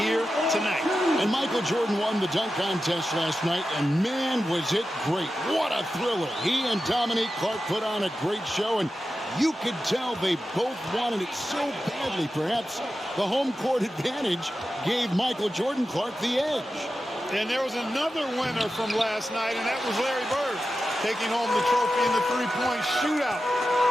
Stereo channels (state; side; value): normal; both; correlation 0.92